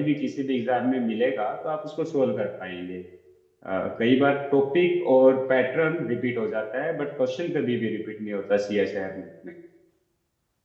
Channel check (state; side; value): identical; both; correlation 1.00